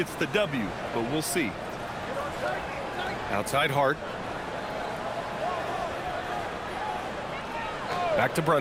the W. But we'll see. Outside Hart. Back to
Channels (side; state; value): both; identical; correlation 1.00